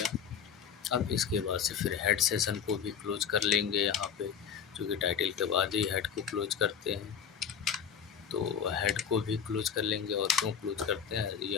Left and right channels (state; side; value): quieter; right; 7.6 dB